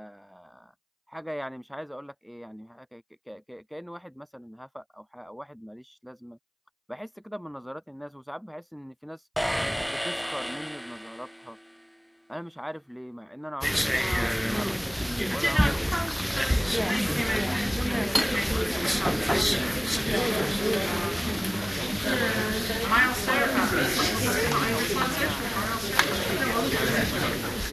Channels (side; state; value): both; identical; correlation 1.00